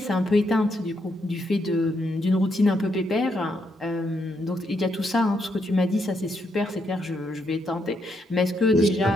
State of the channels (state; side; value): normal; both; correlation 0.78